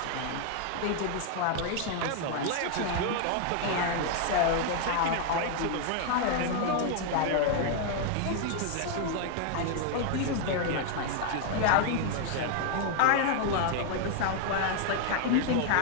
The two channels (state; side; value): different; both; correlation 0.00